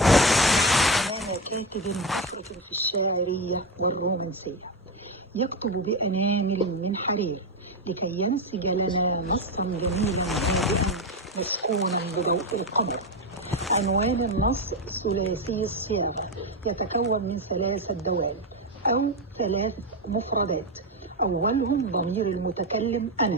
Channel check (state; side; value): normal; both; correlation 0.13